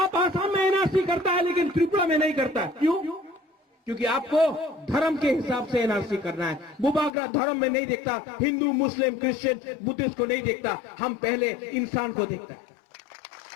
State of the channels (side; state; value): right; drops out; at 7.1 s